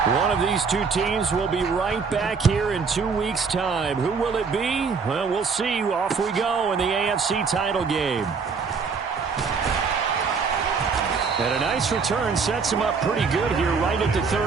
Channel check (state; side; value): quieter; left; 5.3 dB